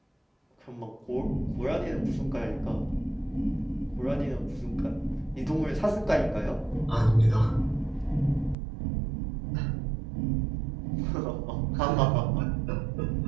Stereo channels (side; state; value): left; drops out; at 8.6 s